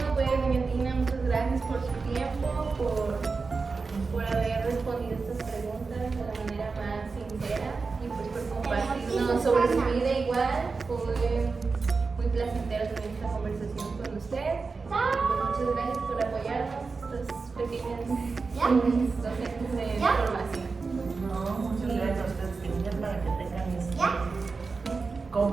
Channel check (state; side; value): quieter; left; 4.4 dB